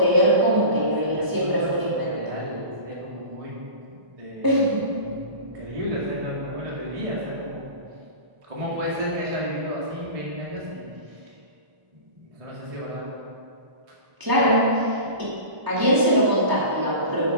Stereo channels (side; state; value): left; late; 1.0 ms